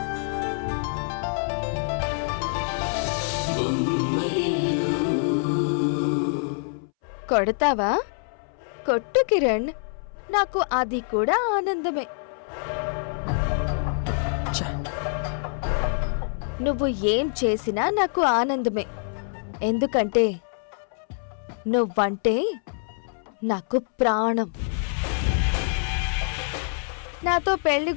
కొడతావా? కొట్టు కిరణ్, నాకు అది కూడా ఆనందమే. నువ్వు ఏం చేసినా నాకు ఆనందమే, ఎందుకంటే నువ్వంటే నాకు ప్రాణం. నాతో పెళ్లి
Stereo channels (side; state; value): right; silent; 61 dB below the other